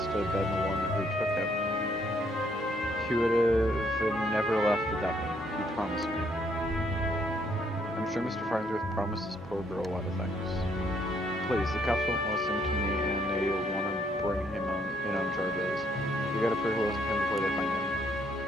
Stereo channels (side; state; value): both; normal; correlation 0.69